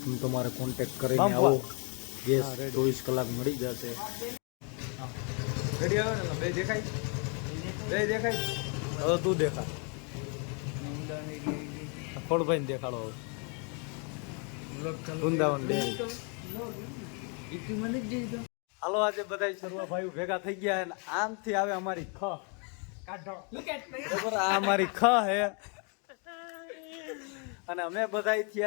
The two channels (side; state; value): right; quieter; 36.7 dB